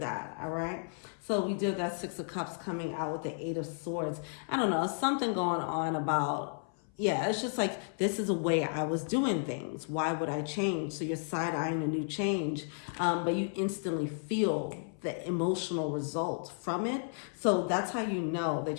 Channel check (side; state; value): right; silent; 56 dB below the other